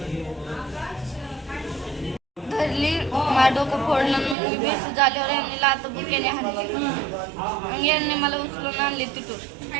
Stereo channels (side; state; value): left; drops out; at 4.4 s